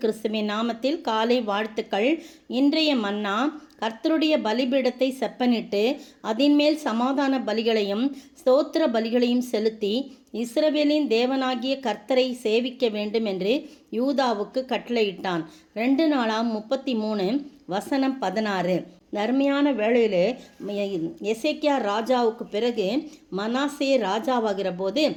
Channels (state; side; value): identical; both; correlation 1.00